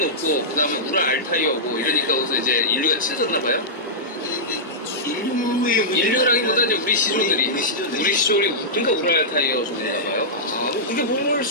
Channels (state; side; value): normal; both; correlation -0.13